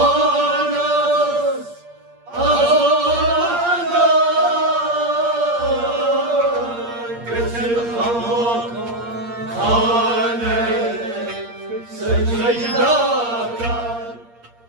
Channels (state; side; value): late; left; 8.6 ms